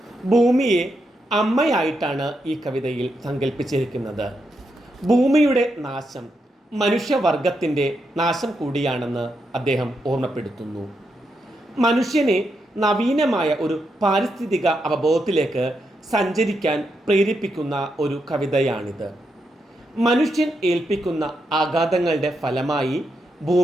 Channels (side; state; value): both; normal; correlation 0.83